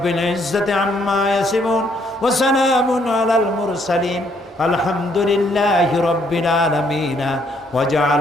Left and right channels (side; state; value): both; normal; correlation 0.69